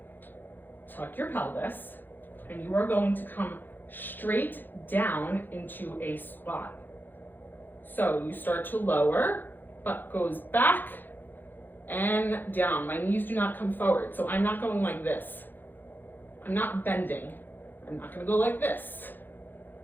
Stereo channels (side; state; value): right; late; 0.091 ms